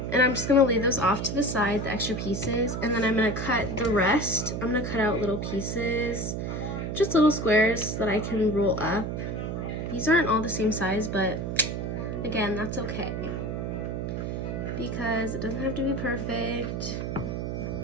And I'm just gonna lay those off to the side, the extra pieces, and then I'm gonna cut the rest. I'm gonna cut out little pieces, just little squares that I can roll up. These aren't all the same size, but again, that's okay, because it doesn't have to be perfect.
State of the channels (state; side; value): noise; right; hum, 3 dB below the sound